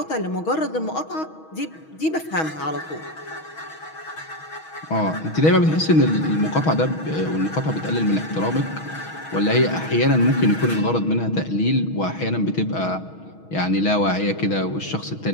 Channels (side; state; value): right; late; 6.3 ms